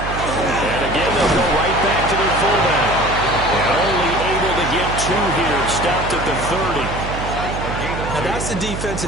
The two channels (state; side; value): noise; right; hum, 6 dB below the sound